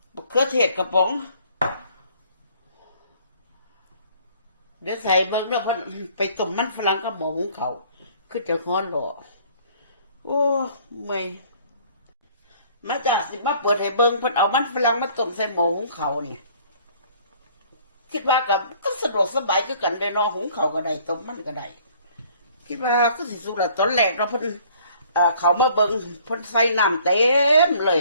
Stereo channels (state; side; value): inverted; both; correlation -0.57